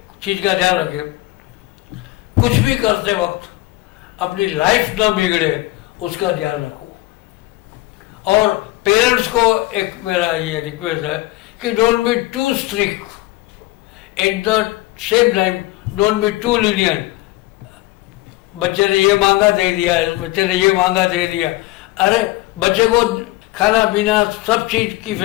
चीज का ध्यान रखें, कुछ भी करते वक्त अपनी लाइफ न बिगड़े उसका ध्यान रखो। और पेरेंट्स को एक मेरा ये रिक्वेस्ट है कि don't be too strict, at the same time don't be too lenient. बच्चे ने ये मांगा दे दिया, बच्चे ने ये मांगा दे दिया। अरे बच्चे को खाना पीना सब चीज की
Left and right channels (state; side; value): quieter; right; 18.8 dB